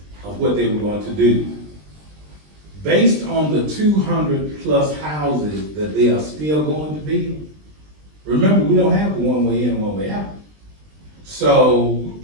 of what they were going to do, based on the 200+ houses that they are still going to build, remember, we don't have a one-way in, one-way out. So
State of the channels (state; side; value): late; left; 20 ms